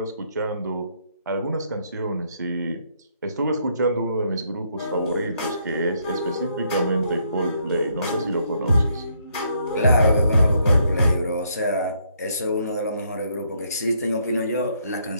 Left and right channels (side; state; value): both; inverted; correlation -0.72